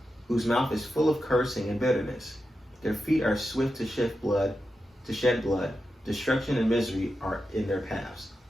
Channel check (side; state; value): both; normal; correlation 0.89